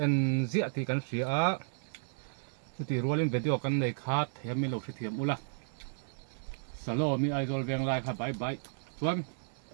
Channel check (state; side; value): silent; left; 56 dB below the other